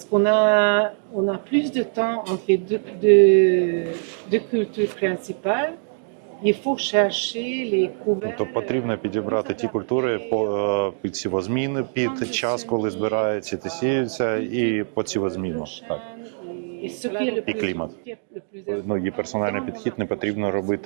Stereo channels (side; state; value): left; silent; digital silence